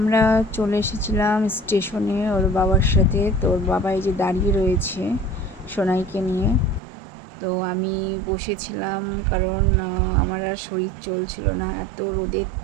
চলে এসেছিলাম স্টেশনে ওর বাবার সাথে। তো ওর বাবা এই যে দাঁড়িয়ে রয়েছে সোনাইকে নিয়ে। তো আমি বসেছিলাম, কারণ আমার আর শরীর চলছিল না, এত রোদের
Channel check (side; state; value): left; drops out; at 6.8 s